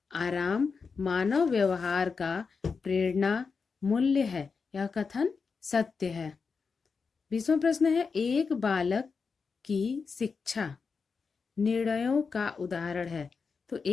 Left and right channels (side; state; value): right; quieter; 5.2 dB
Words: आराम मानव व्यवहार का प्रेरणा मूल्य है, यह कथन सत्य है। 20वां प्रश्न है एक बालक की शिक्षा निर्णयों का उदाहरण है। तो